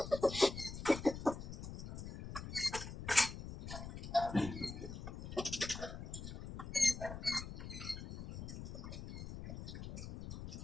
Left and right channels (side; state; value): left; noise; rumble, 8 dB below the sound